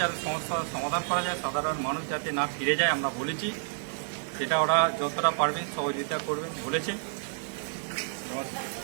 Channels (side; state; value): left; silent; digital silence